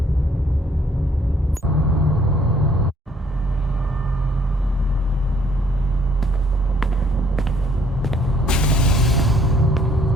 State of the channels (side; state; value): both; normal; correlation 0.64